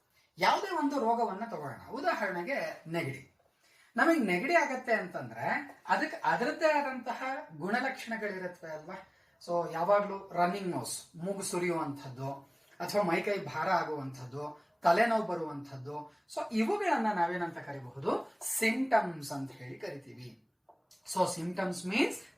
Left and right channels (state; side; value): identical; both; correlation 1.00